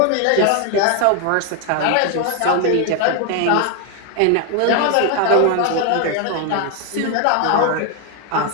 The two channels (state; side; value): different; both; correlation 0.01